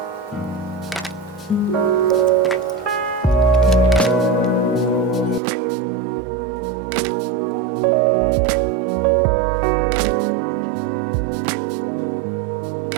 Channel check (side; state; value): left; drops out; at 5.4 s